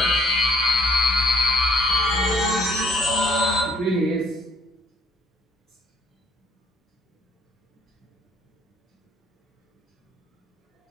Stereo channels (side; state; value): both; normal; correlation 0.61